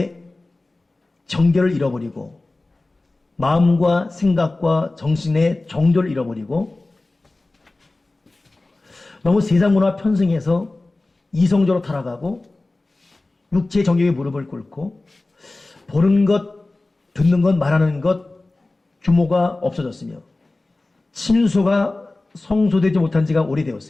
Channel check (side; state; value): right; quieter; 3.0 dB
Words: 정결을 잃어버리고 마음과 생각과 정신의 정도를 잃어버리고 너무 세상 문화 편승해서 이성적으로 타락하고 육체의 정욕에 무릎을 꿇고 보는 것, 듣는 것, 말하는 것 규모가 없어졌으며 친소가 성소되지 못한 지가